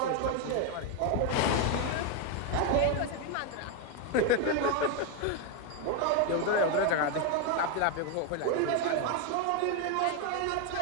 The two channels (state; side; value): different; both; correlation 0.01